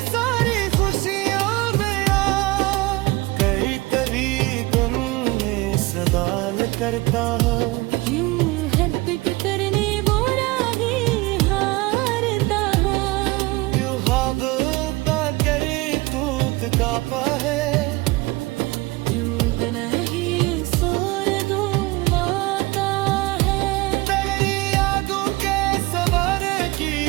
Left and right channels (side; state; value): left; quieter; 21.9 dB